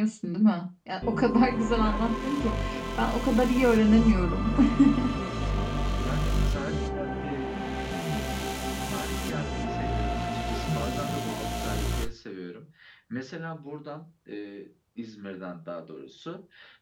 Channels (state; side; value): identical; both; correlation 1.00